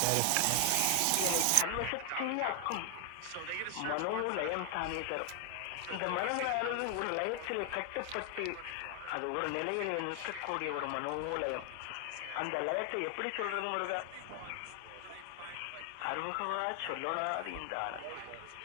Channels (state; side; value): different; both; correlation 0.00